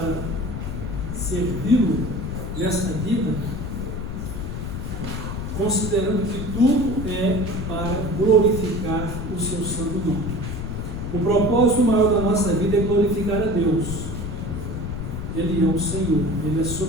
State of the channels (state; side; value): noise; left; rumble, 5 dB below the sound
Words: servi-lo nesta vida? Considerando que tudo é para glorificar o seu santo nome. O propósito maior da nossa vida é glorificar a Deus. Ele é o Senhor, Ele é